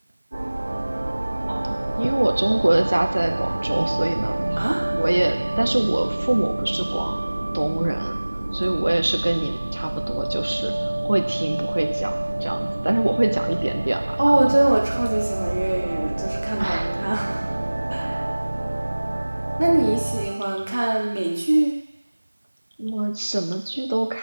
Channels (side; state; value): both; inverted; correlation -1.00